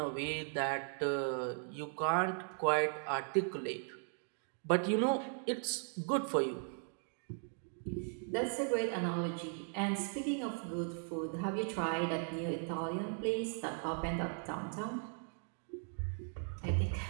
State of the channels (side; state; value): left; silent; 52 dB below the other